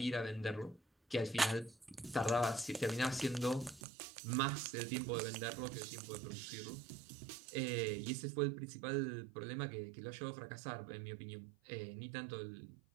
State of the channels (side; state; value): left; drops out; at 3.8 s